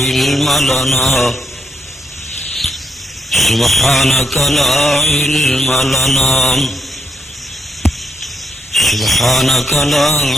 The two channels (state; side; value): normal; both; correlation 0.79